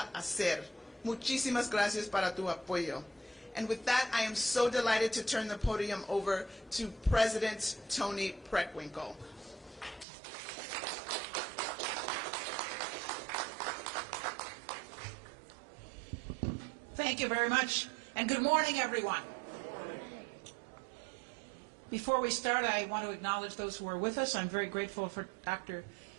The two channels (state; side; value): drops out; left; at 10.1 s